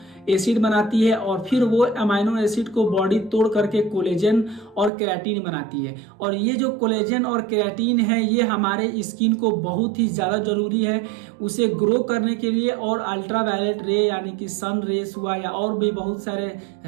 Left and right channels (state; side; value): drops out; left; at 4.9 s